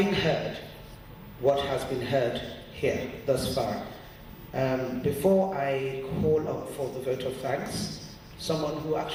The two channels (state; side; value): identical; both; correlation 1.00